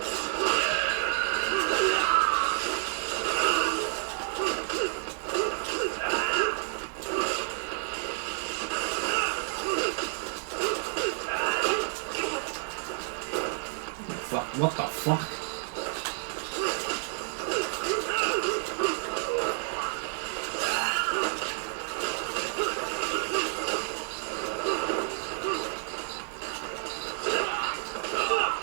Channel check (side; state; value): left; silent; digital silence